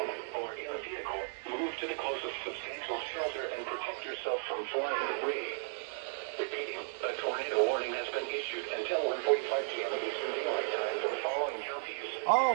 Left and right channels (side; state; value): left; silent; digital silence